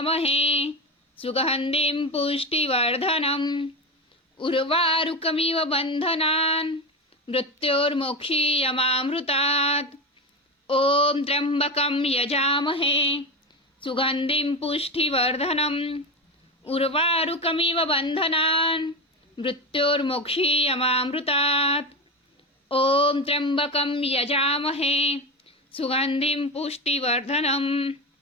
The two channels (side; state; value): both; normal; correlation 0.20